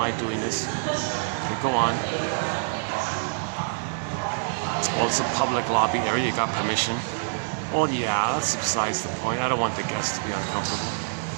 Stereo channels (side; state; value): left; silent; 55 dB below the other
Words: doing this. Okay, go on. Well, it's a public lobby area, you got permission. Well, yeah, that's besides the point. I don't want the guests to be uncomfortable.